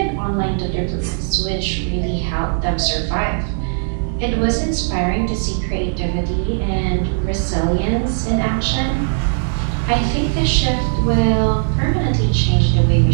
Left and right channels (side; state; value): left; silent; digital silence